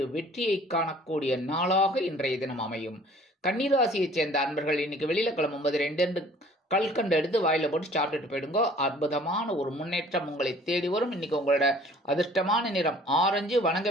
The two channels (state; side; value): normal; both; correlation 0.53